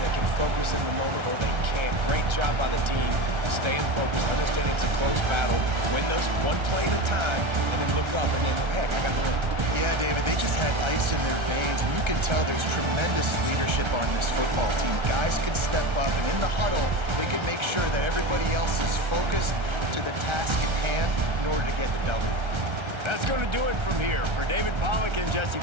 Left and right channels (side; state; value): left; late; 1.3 ms